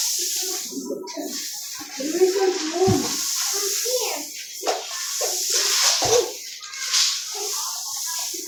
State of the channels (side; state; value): both; identical; correlation 1.00